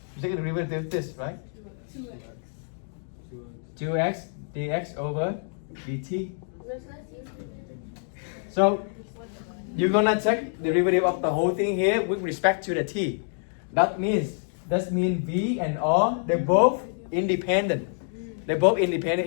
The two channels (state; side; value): silent; right; digital silence